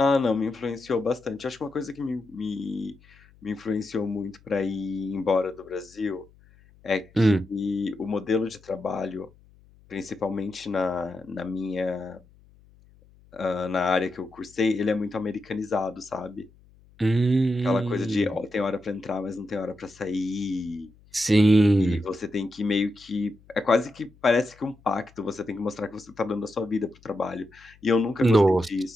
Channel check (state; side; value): noise; left; hum, 28 dB below the sound